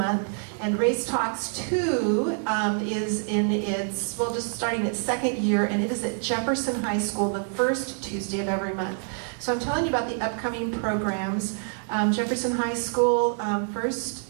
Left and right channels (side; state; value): left; silent; 55 dB below the other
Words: And Race Talks 2 is in its, well, just starting its second year, and it is at Jefferson High School the first Tuesday of every month. So I'm telling you about the upcoming programs. Jefferson High School,